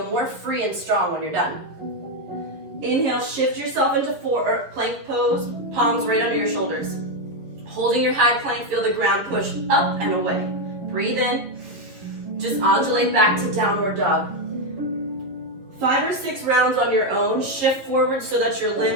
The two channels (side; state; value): left; late; 11 ms